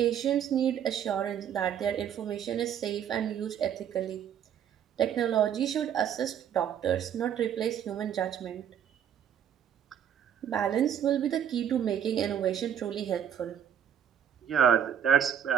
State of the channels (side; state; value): left; quieter; 9.1 dB